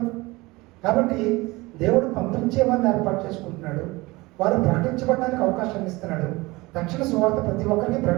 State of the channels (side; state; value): left; quieter; 22.0 dB